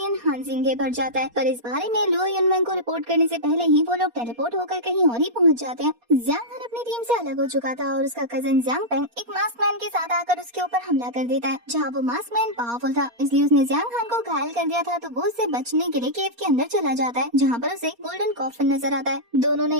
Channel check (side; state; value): left; late; 4.2 ms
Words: हानजिंग के भर जाता है। पर इस बारे में लो युनमैंग को रिपोर्ट करने से पहले ही वो लोग टेलीपोर्ट होकर कहीं और ही पहुंच जाते हैं। ज़ांग हान अपनी टीम से अलग हो चुका था और उसका कजिन ज़ांग पेंग एक मास्क मैन के साथ आकर उसके ऊपर हमला कर देता है, जहाँ वो मास्क मैन पावरफुल था इसलिए उसने ज़ांग हान को घायल कर दिया था। तो वो उससे बचने के लिए केव के अंदर चला जाता है, जहाँ पर उसे गोल्डन कॉफिन नजर आता है। दोनों ने